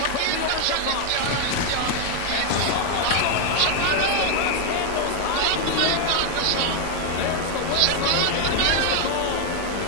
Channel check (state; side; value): different; both; correlation 0.00